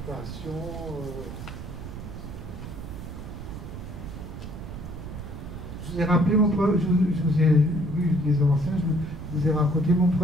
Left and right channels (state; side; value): noise; right; rumble, 9 dB below the sound